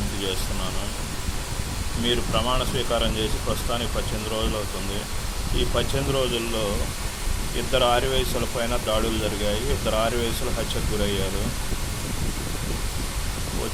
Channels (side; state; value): both; identical; correlation 1.00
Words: చేస్తున్నాను. మీరు ప్రమాణ స్వీకారం చేసి ప్రస్తుతానికి 18 రోజులు అవుతుంది. ఈ 18 రోజుల్లో 2 ఆర్యవైశ్యుల పైన దాడులు జరిగాయి. 2 ఆర్యవైశ్యులు హత్యకు గురయ్యారు.